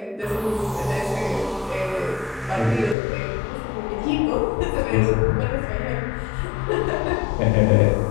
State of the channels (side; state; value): right; drops out; at 3.0 s